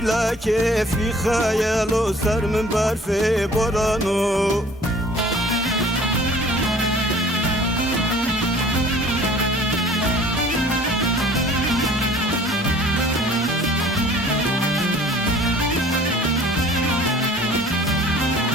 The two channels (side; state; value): both; normal; correlation 0.51